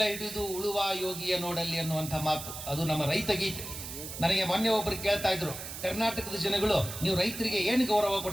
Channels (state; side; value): noise; right; hiss, 9 dB below the sound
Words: ಹಿಡಿದು ಉಳುವ ಯೋಗಿಯ ನೋಡಲ್ಲಿ ಅನ್ನುವಂಥ ಮಾತು, ಅದು ನಮ್ಮ ರೈತ ಗೀತೆ. ನನಗೆ ಮೊನ್ನೆ ಒಬ್ಬರು ಕೇಳ್ತಾ ಇದ್ರು, ಕರ್ನಾಟಕದ ಜನಗಳು ನೀವು ರೈತರಿಗೆ ಏನು ಗೌರವ